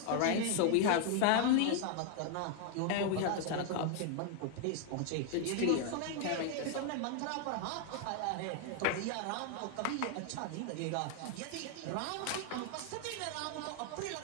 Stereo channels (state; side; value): different; both; correlation 0.00